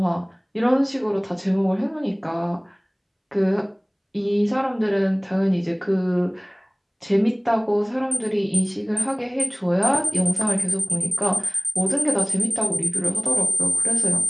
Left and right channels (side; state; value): both; identical; correlation 1.00